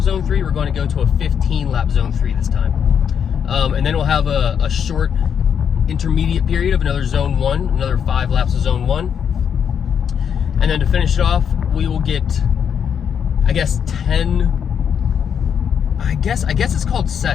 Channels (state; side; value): quieter; right; 7.8 dB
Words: zone 3, we're going to go to a 15-lap zone 3 this time. And then we'll have a Short intermediate period of another zone 1, another 5 laps of zone 1. And then to finish it off, we will get, I guess it's called